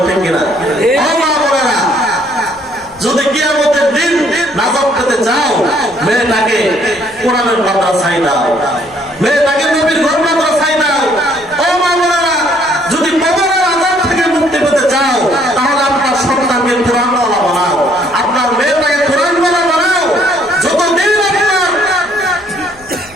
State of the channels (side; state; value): left; noise; rumble, 27 dB below the sound